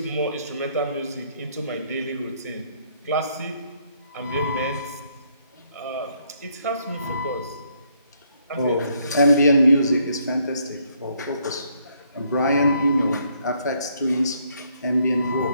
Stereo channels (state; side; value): inverted; both; correlation -0.70